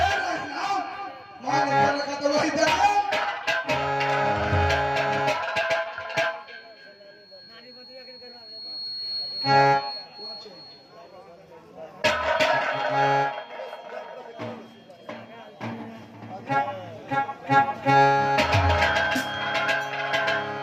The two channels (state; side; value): identical; both; correlation 1.00